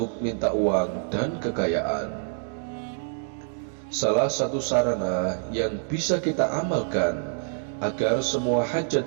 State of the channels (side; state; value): left; silent; digital silence